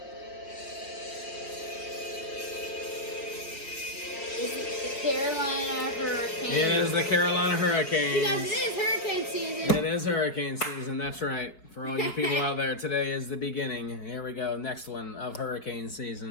Carolina Hurricanes. It is the Carolina Hurricanes. Because it is hurricane season. It is hurricane season. That's right. For all you people out there, today is the beginning. Here we go. Next one of hurricane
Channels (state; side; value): late; right; 4.9 ms